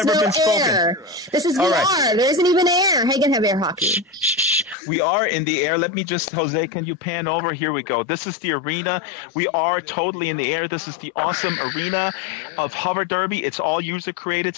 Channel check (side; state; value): right; drops out; at 4.8 s